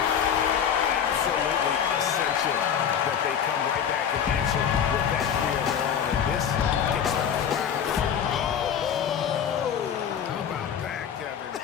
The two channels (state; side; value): quieter; right; 8.3 dB